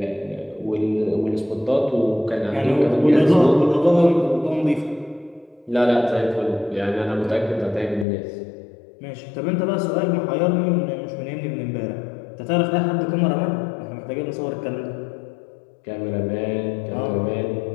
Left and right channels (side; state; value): right; drops out; at 8.1 s